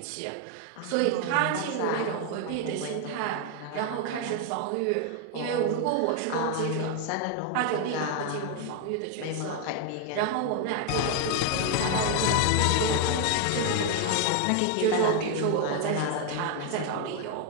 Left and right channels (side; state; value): both; different; correlation 0.00